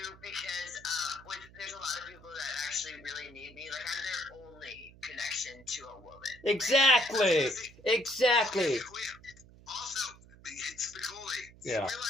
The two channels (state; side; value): noise; right; hum, 22 dB below the sound